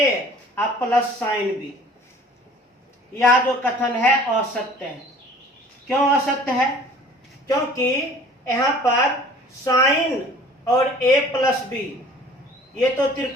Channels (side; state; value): both; normal; correlation 0.49